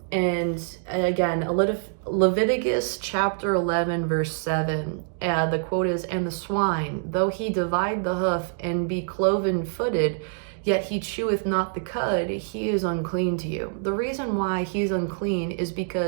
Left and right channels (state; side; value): silent; left; digital silence